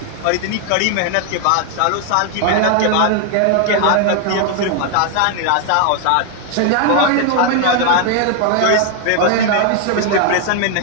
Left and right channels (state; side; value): different; both; correlation 0.00